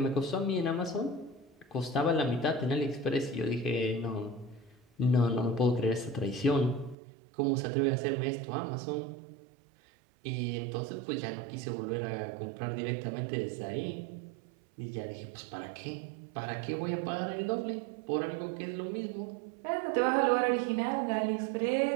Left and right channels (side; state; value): left; drops out; at 7.0 s